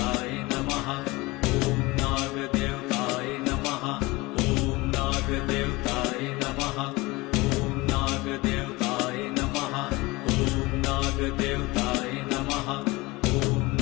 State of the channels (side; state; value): right; quieter; 22.4 dB